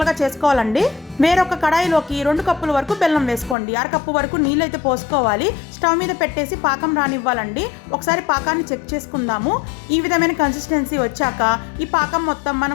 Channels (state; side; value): drops out; right; at 3.6 s